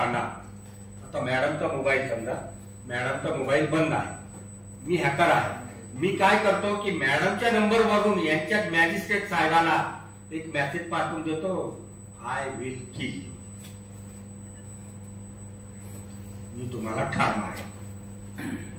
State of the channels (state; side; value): identical; both; correlation 1.00